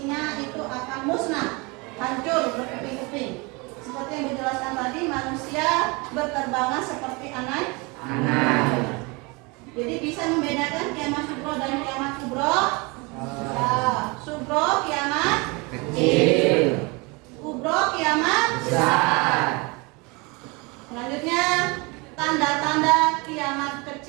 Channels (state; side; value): quieter; left; 27.5 dB